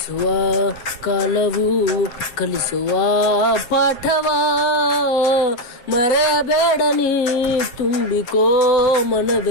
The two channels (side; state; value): right; late; 7.4 ms